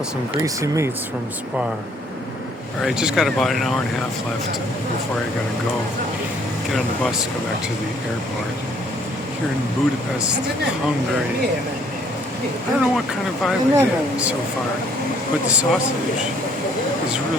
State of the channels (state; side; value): normal; both; correlation 0.62